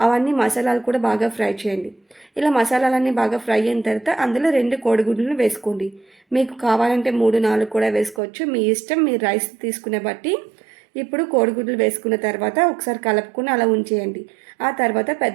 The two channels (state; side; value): drops out; left; at 8.2 s